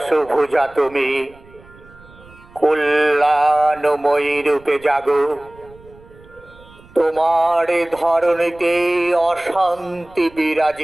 তুমি, কল্যাণময়ী রূপে জাগো। তোমার ধরণীতে অশান্তি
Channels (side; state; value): right; noise; rumble, 24 dB below the sound